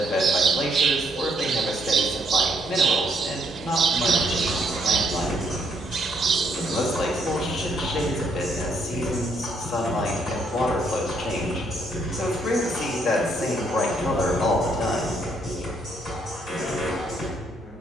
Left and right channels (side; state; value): both; normal; correlation 0.72